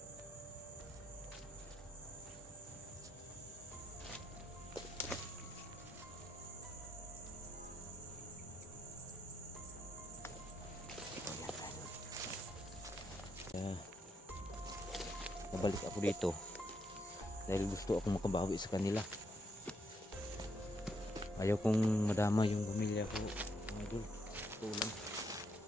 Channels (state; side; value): normal; both; correlation 0.77